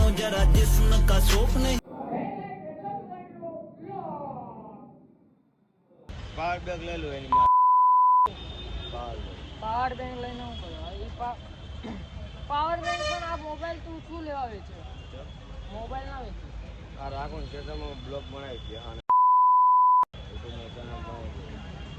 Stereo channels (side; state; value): both; identical; correlation 1.00